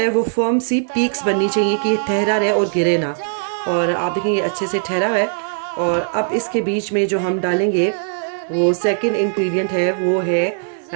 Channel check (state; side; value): silent; left; digital silence